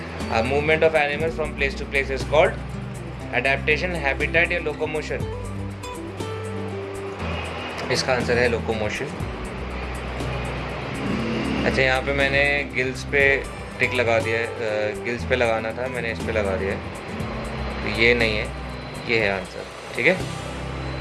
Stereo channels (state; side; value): identical; both; correlation 1.00